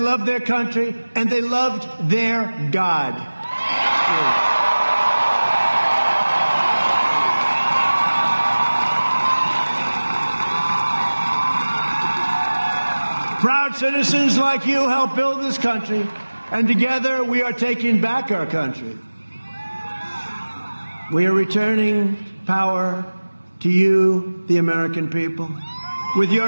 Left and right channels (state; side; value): inverted; both; correlation -1.00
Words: their country, and they loved their God. Proud citizens like you helped build this country, and together we are taking back our country. We are returning power to you, the American people. With